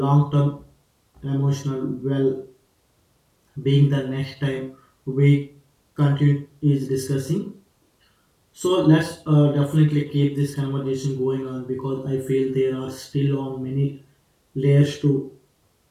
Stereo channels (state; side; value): identical; both; correlation 1.00